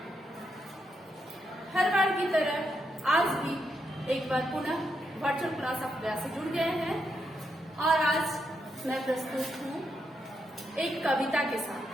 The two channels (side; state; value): both; normal; correlation 0.81